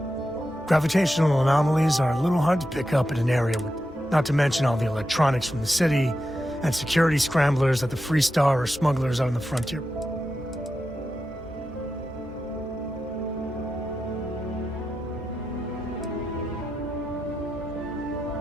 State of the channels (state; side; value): normal; both; correlation 0.89